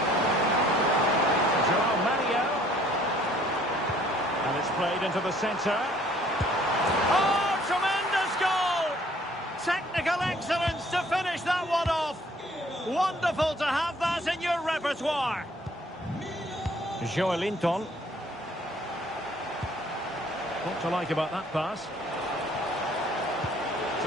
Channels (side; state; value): both; normal; correlation 0.59